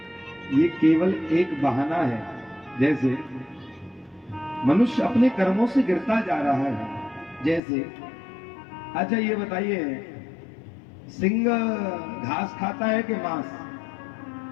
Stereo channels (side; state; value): right; drops out; at 7.6 s